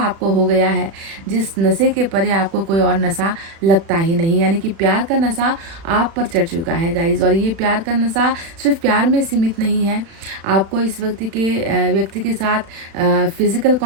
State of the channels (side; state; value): left; late; 36 ms